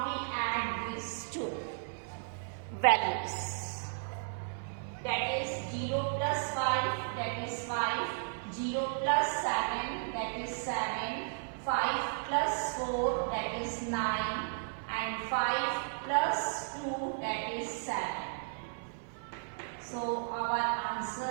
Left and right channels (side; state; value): left; silent; digital silence